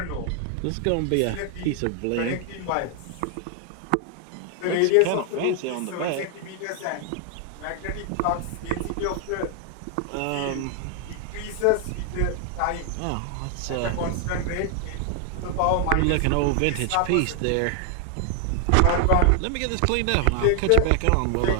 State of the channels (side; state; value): both; different; correlation 0.00